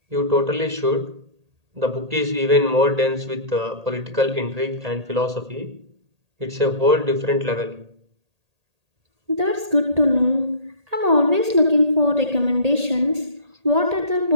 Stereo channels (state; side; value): late; left; 1.8 ms